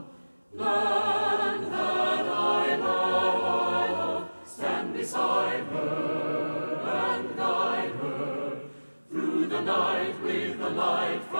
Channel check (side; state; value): both; inverted; correlation -1.00